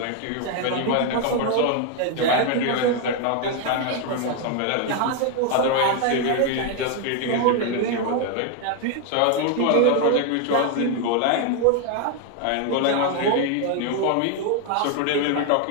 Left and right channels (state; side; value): different; both; correlation 0.01